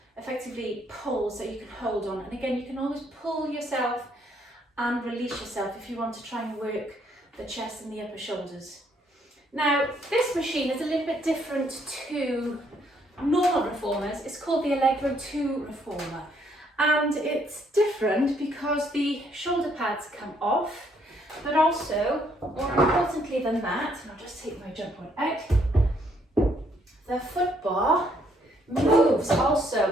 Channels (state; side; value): normal; both; correlation 0.69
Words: effectively poles that you can hold on. And again, you can always pull yourself and release yourself if you want to try and work the chest and the upper shoulders. Now, this machine is a little bit different to normal reformers. It's called the Allegro 2 reformer. And it's different because the shoulder pads come off, but also, more importantly than that, and I'll just take my jump board out, the foot bar moves